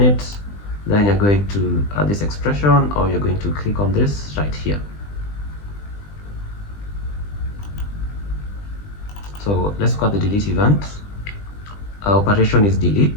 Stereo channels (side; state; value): right; late; 20 ms